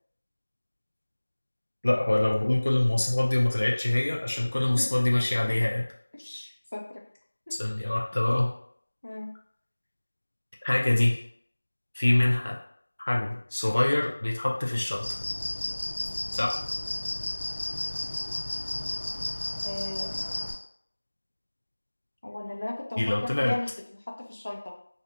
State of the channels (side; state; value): both; inverted; correlation -1.00